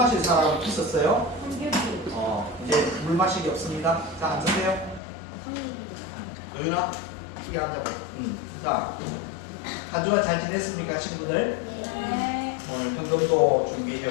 사람 있었어요? 이제 물 마시기 없습니다. 자, 앉으세요. 도윤아, 크게 앉아봐. 자, 한 주간 잘 지냈습니까, 친구들? 네. 오늘 헌금도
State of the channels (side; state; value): right; drops out; at 5.0 s